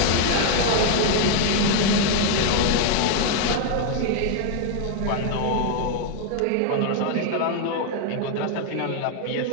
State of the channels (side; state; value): both; different; correlation 0.00